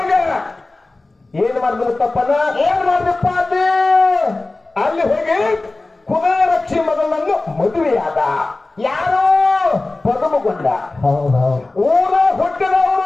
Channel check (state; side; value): quieter; right; 3.1 dB